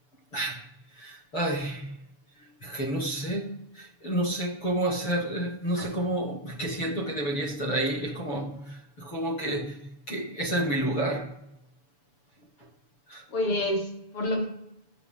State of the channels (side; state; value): right; late; 6.9 ms